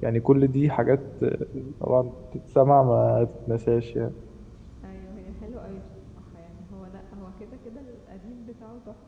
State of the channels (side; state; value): both; identical; correlation 1.00